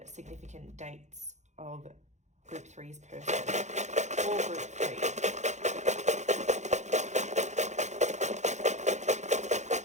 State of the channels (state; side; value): late; left; 0.34 ms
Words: significant dates of group 3's person, or group 3.